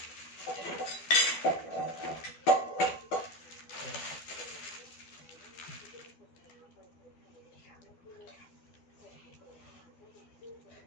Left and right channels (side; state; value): right; late; 12 ms